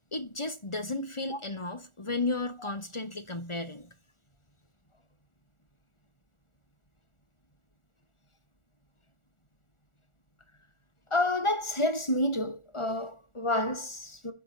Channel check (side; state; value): right; late; 1.4 ms